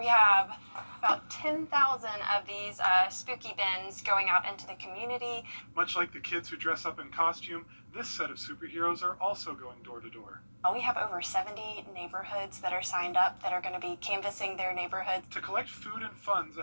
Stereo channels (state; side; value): inverted; both; correlation -1.00